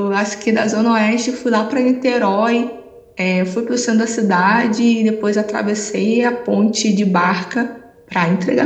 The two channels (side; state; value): both; identical; correlation 1.00